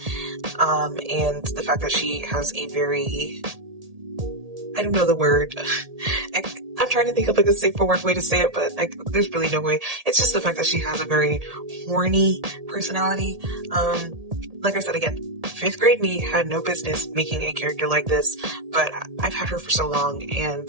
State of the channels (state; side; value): late; left; 1.8 ms